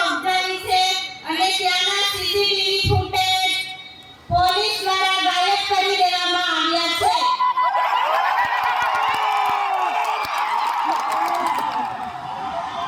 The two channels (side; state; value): both; identical; correlation 1.00